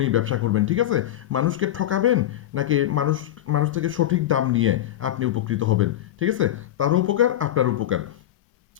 ব্যবসা করবেন। ঠিক আছে, মানুষকে ঠকাবেন নাকি মানুষ থেকে সঠিক দাম নিয়ে আপনি উপকৃত হবেন। ঠিক আছে, তারও উপকার আপনার উপকার।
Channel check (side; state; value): right; quieter; 12.8 dB